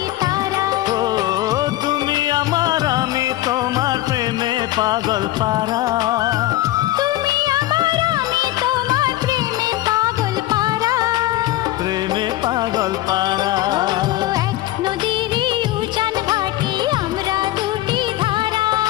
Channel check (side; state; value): right; quieter; 15.8 dB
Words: তারা। ও তুমি আমার আমি তোমার প্রেমে পাগল পারা, তুমি আমার আমি তোমার প্রেমে পাগল পারা, প্রেমে পাগল পারা। এক নদীরই উজান ভাটি আমরা দুটি ধারা,